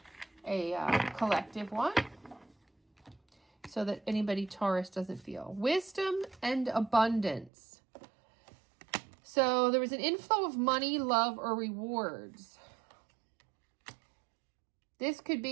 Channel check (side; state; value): left; drops out; at 7.5 s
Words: collective one so that anybody Taurus doesn't feel. Wisdom and abundance. So there was an inflow of money, love, or rewards. This could